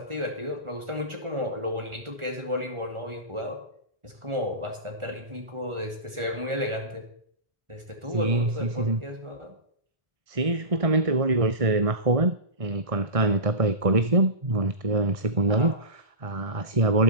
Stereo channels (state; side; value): late; left; 1.4 ms